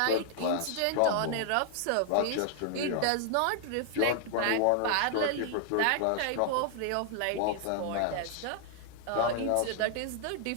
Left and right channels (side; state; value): both; different; correlation 0.00